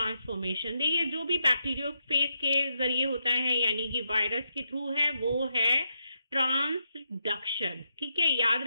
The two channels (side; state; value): both; inverted; correlation -0.82